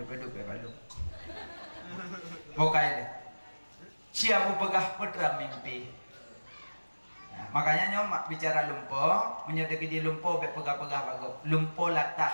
beduk ke balu. Bokai dia. Siapa pegah putra mimpi. Nah, makanya nyomak bicara lumpur, menyedeki di lumpur be pegah-pegah bagus. Lumpur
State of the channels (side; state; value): both; inverted; correlation -1.00